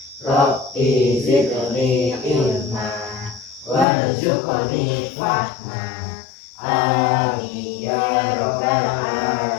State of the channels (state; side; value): drops out; right; at 3.9 s